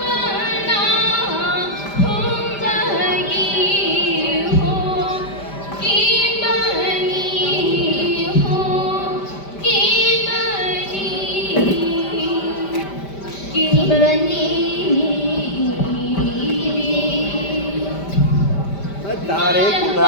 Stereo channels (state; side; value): late; right; 5.1 ms